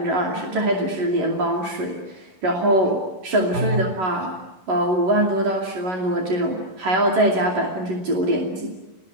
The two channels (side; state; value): left; late; 11 ms